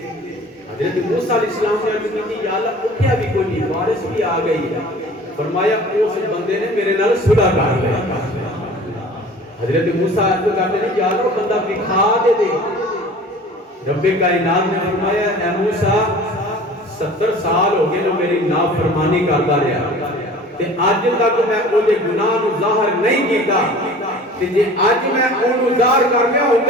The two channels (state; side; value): normal; both; correlation 0.44